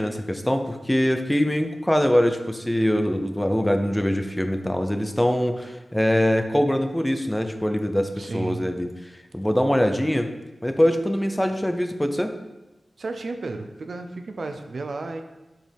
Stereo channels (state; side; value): normal; both; correlation 0.98